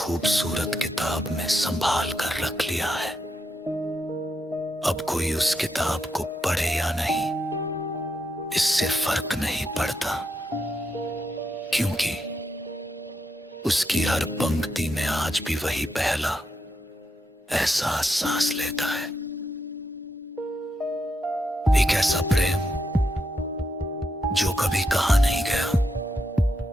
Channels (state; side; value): normal; both; correlation 0.82